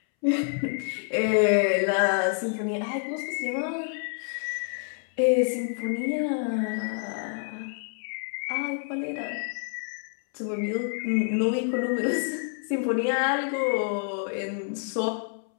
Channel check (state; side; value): silent; right; 60 dB below the other